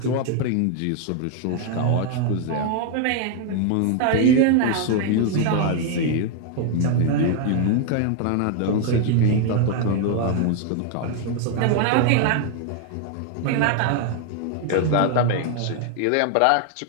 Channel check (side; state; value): both; different; correlation 0.00